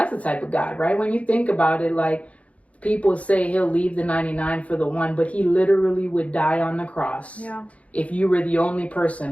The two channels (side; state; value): right; late; 0.065 ms